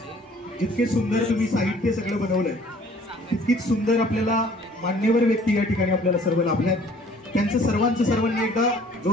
जितके सुंदर तुम्ही साहित्य सगळं बनवलंय तितकीच सुंदर आपल्याला मान्यवर व्यक्ती या ठिकाणी आपल्याला सर्व लाभल्यात. त्यांचं सर्वांनी एकदा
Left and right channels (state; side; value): normal; both; correlation 0.55